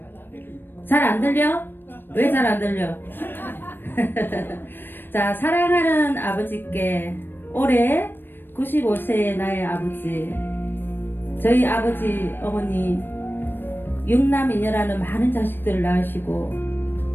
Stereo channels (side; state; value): right; late; 0.096 ms